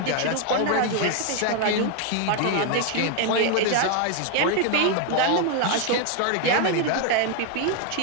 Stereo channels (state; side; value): different; both; correlation 0.00